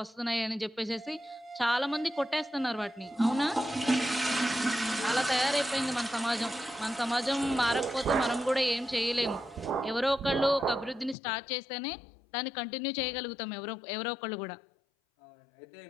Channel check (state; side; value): drops out; right; at 11.2 s